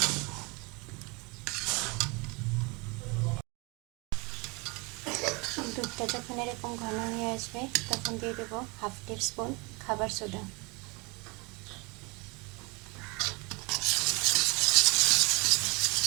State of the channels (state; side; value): quieter; left; 26.9 dB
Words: দুধটা যখন এরকম ঘন হয়ে আসবে তখন দিয়ে দেব হাফ টিস্পুন খাবার সোডা।